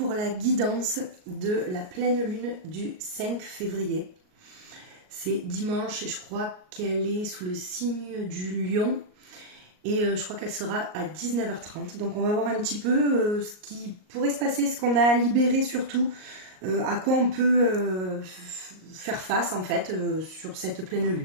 la guidance de la pleine lune du 5 février. C'est dimanche et je crois qu'elle est sous le signe du lion et je crois qu'elle sera à 19h30. Donc on va voir un petit peu ce qui pourrait se passer, ce qu'on a à libérer surtout, à quoi on peut faire face en fait sur cette pleine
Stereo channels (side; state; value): left; late; 38 ms